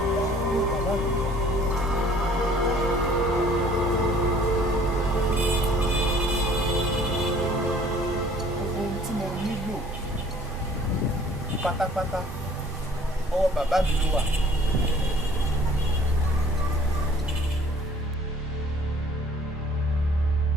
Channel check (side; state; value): both; normal; correlation 0.54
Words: Pátápátá ọwọ́ bàbá mi ló wà.